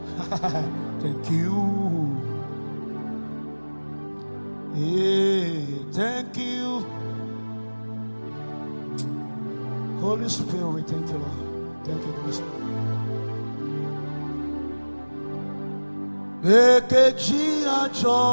Thank you, yeah, thank you. Holy Spirit, thank you, Lord. Thank you, Holy Spirit. Ekeji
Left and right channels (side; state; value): both; inverted; correlation -1.00